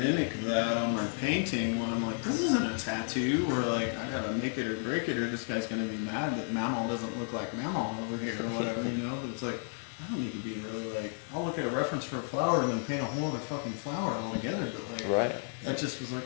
that on my painting when I'm like, this isn't a tattoo, or like, I gotta make it or break it, or this guy's gonna be mad that Mamal doesn't look like Mamal over here, or whatever, but it's like, I don't need to be really like, I'll look at a reference for a flower and then paint a whole other fucking flower altogether, but like, Right. that just was like,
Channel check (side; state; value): right; silent; 56 dB below the other